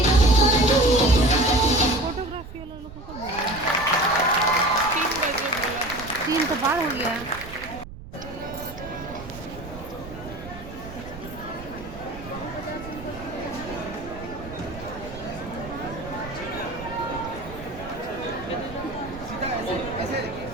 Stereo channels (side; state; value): right; noise; rumble, 14 dB below the sound